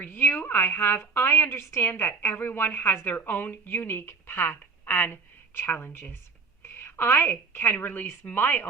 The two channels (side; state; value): left; quieter; 4.9 dB